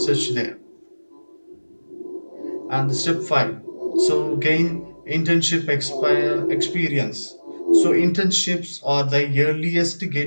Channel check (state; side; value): inverted; both; correlation -1.00